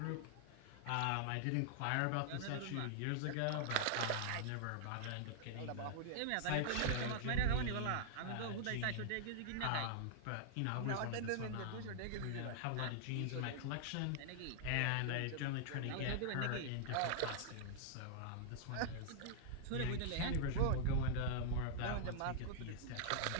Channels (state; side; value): different; both; correlation -0.01